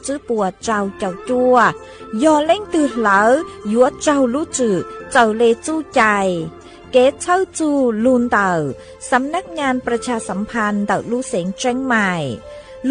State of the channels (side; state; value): both; identical; correlation 1.00